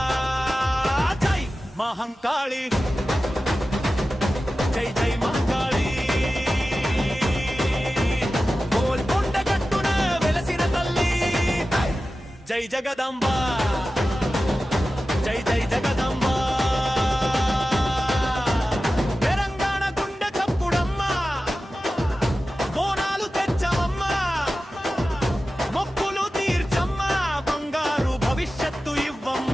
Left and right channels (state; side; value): normal; both; correlation 0.94